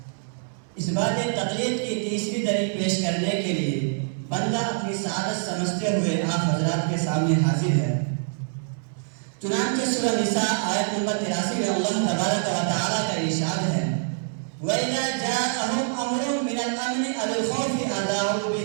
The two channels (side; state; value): left; silent; 61 dB below the other